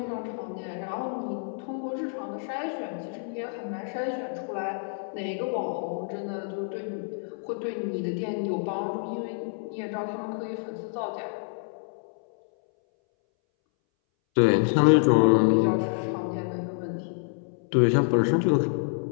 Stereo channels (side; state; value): right; silent; 60 dB below the other